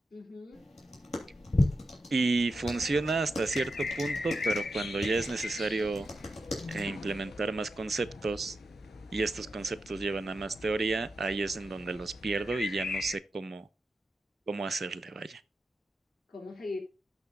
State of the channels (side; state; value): both; normal; correlation 0.88